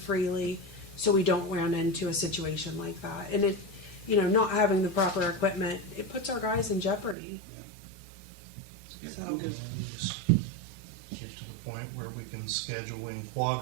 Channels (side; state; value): left; drops out; at 7.2 s